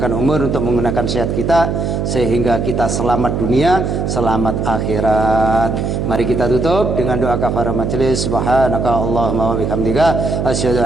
umur, untuk menggunakan sehat kita, sehingga kita selamat dunia, selamat akhirat. Mari kita tutup dengan doa kafarah majelis. Subhanaka Allahumma wa bihamdika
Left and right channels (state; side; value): noise; right; hum, 1 dB below the sound